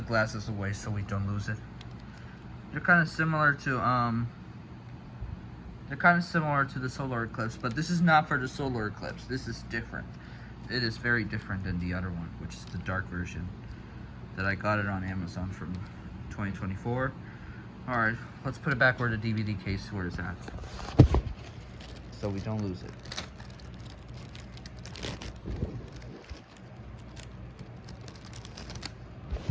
glasses away so we don't lose it. They're kind of similar to the solar eclipse, but this is not for the solar eclipse. This is different. It is very different than the other one, which is the dark version that I got it on Amazon from 2024. All right, let's put it back where the DVD case where it's at, so we don't lose it.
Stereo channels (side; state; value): both; identical; correlation 1.00